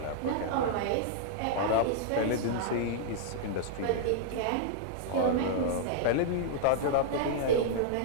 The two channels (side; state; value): both; different; correlation -0.01